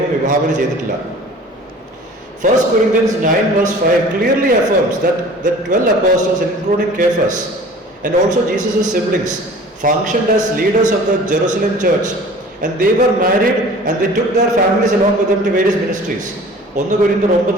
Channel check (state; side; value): normal; both; correlation 0.45